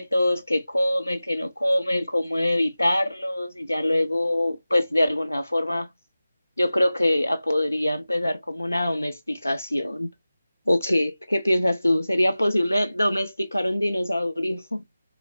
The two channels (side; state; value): both; inverted; correlation -0.96